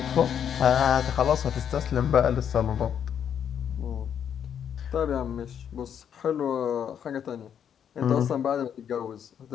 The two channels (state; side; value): quieter; right; 8.6 dB